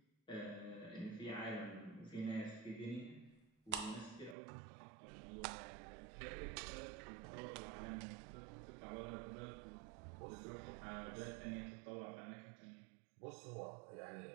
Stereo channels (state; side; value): drops out; left; at 4.4 s